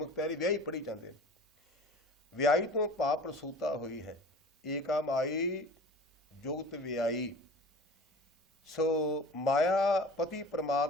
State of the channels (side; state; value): both; normal; correlation 0.41